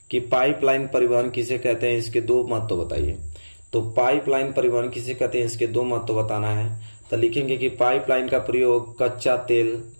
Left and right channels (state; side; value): inverted; both; correlation -1.00